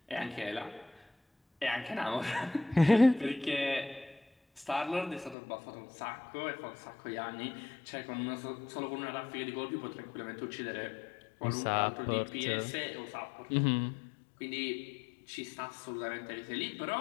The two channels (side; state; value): right; drops out; at 5.4 s